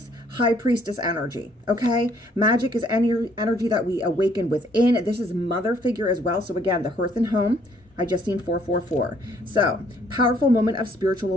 High Priestess energy, okay? Magic is any energy that we awaken within. This is mother figure as well. So again, the hearth and home. I just seen 444. So, powerful moment of spiritual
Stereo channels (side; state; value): both; normal; correlation 0.64